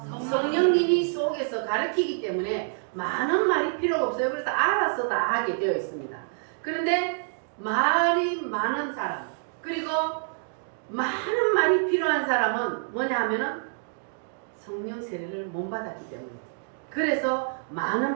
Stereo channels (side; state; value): left; silent; digital silence